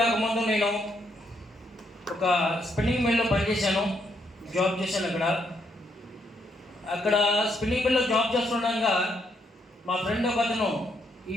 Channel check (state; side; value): normal; both; correlation 0.75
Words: రాకముందు నేను ఒక స్పిన్నింగ్ మిల్లో పనిచేశాను, జాబ్ చేశాను. అక్కడ స్పిన్నింగ్ మిల్లో జాబ్ చేస్తుండగా మా ఫ్రెండ్ ఒక అతను